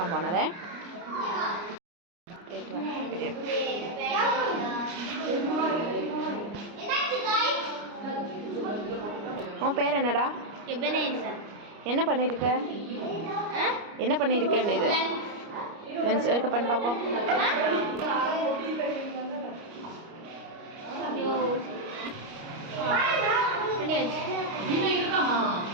പോണത്. പേരെന്നടാ? என்ன பண்ணியிருக்க இது லென்ஸ் இருக்க பண்ணி பார்ப்போம்.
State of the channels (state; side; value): late; left; 29 ms